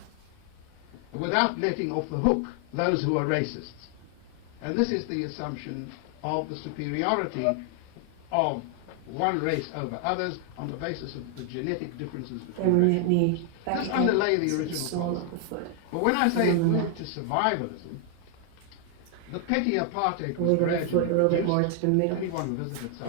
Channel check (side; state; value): both; different; correlation 0.00